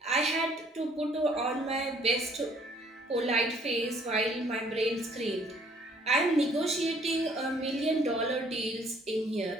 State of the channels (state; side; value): normal; both; correlation 0.61